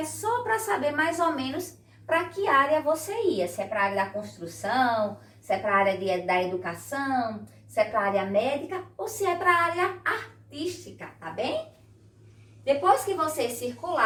só para saber mais ou menos para que área você ia. Se é para a área da construção, se é para a área da educação, se é para a área médica ou se é para a área artística, tá bem? Depois que você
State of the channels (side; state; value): both; identical; correlation 1.00